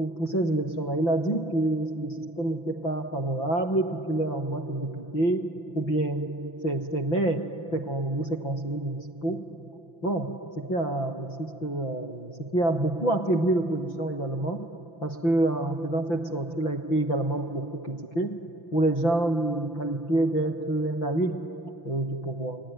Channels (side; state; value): right; late; 5.9 ms